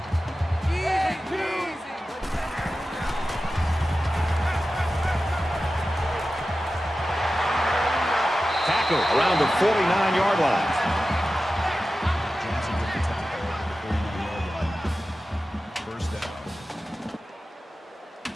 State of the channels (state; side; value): normal; both; correlation 0.94